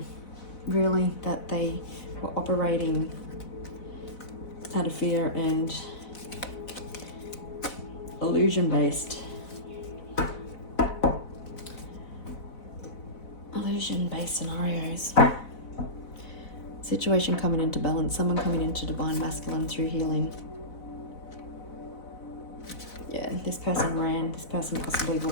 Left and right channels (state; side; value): late; right; 4.0 ms